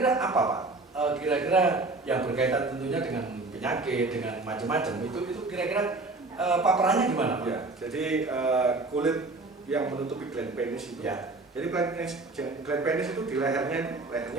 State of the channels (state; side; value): quieter; left; 3.3 dB